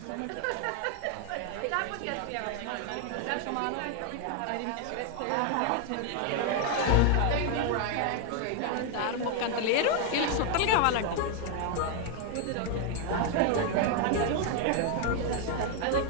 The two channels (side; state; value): both; different; correlation 0.00